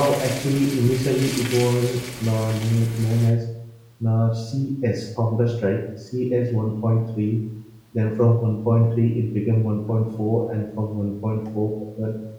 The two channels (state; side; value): identical; both; correlation 1.00